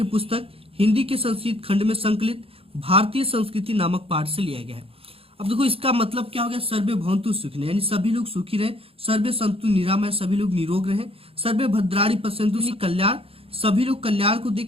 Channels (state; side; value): late; left; 0.27 ms